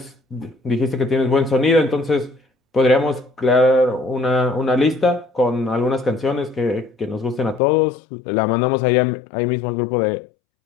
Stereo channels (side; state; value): right; drops out; at 7.6 s